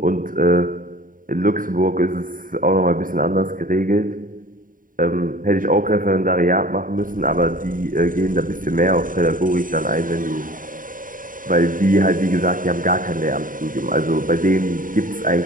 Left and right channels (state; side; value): late; left; 0.39 ms